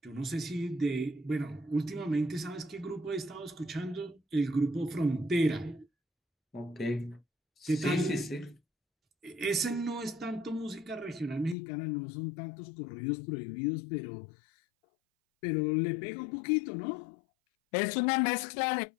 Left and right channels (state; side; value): drops out; right; at 11.6 s